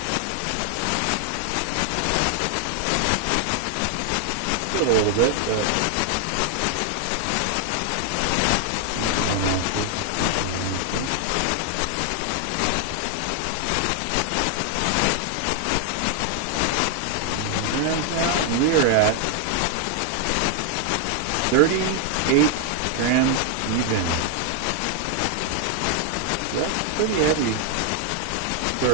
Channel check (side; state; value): both; different; correlation 0.00